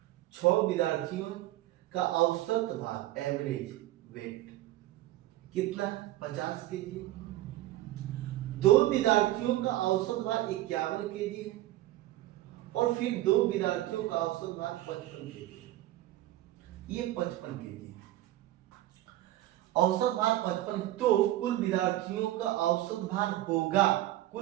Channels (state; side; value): quieter; left; 15.4 dB